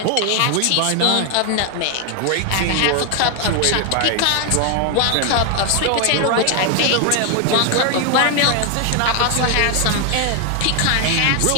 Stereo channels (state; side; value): different; both; correlation 0.00